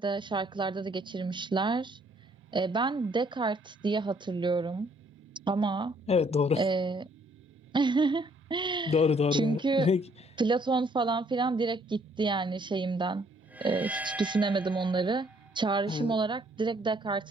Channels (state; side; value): normal; both; correlation 0.65